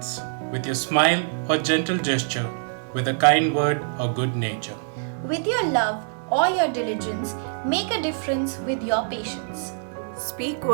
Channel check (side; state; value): left; silent; 61 dB below the other